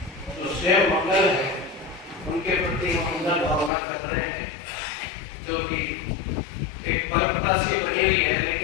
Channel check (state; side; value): drops out; right; at 3.7 s